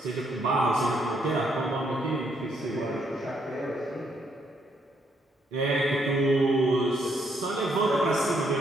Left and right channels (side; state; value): both; normal; correlation 0.73